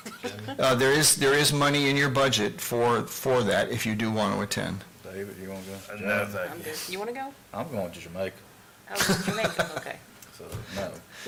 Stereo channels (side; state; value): both; identical; correlation 1.00